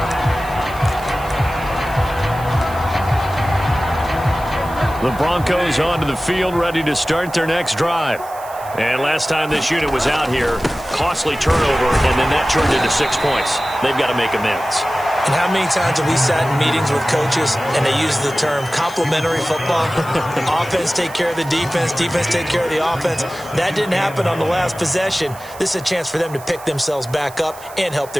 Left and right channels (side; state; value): right; noise; hiss, 20 dB below the sound